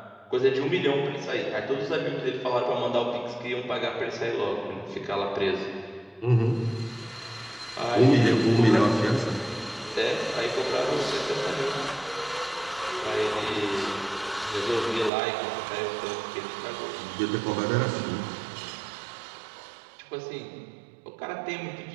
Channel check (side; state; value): left; drops out; at 15.1 s